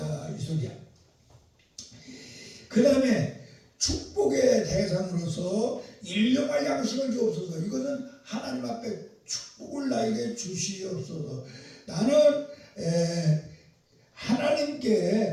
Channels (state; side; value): identical; both; correlation 1.00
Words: 이 소리야. 그 다음에 축복의 대상으로서 일용할 양식을 주옵소서. 이것은 하나님 앞에 축복을 나에게 주시옵소서. 나는